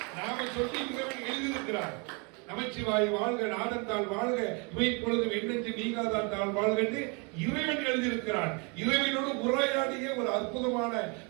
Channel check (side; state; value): left; quieter; 32.3 dB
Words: நாம சொல்லி எழுதியிருக்கிறார், நமச்சிவாய் வாழ்க, நாதத்தால் வாழ்க, இவை பொழுதும் எண்ணெஞ்சு நீங்காதான் தாள் வாழ்க இறைவன் எழுதியிருக்கிறான். இறைவனோடு உரையாடிய ஒரு அற்புதமான